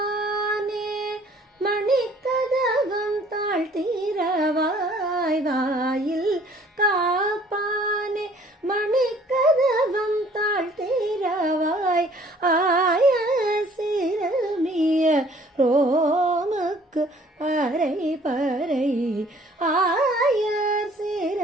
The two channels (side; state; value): both; normal; correlation 0.56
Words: மணிக்கதவம் தாழ்த்திரவாய் வாயில் காப்பானே மணிக்கதவம் தாழ்த்திரவாய் ஆய சிறுமிய ரோமுக்கு அரை பறை ஆய